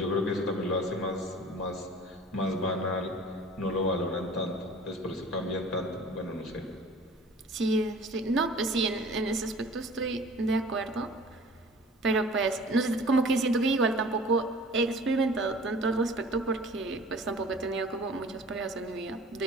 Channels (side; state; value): both; normal; correlation 0.46